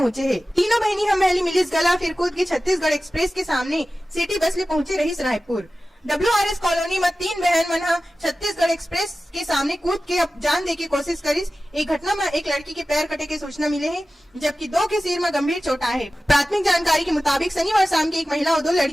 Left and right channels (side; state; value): both; normal; correlation 0.95